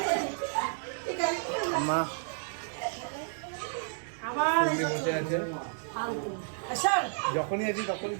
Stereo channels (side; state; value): left; silent; digital silence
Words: মা বসে আছে। যখনই আছি তখনই